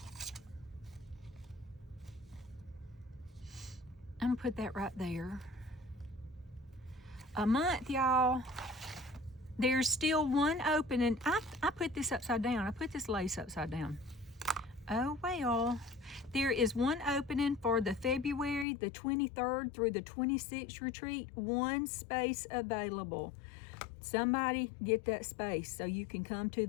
I'm gonna put that right there. a month, y'all. There's still one opening. I put this upside down. I put this lace upside down. Oh, well. There is one opening for the February the 23rd through the 26th retreat. One space available. Somebody get that space so you can come to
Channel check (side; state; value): right; drops out; at 18.7 s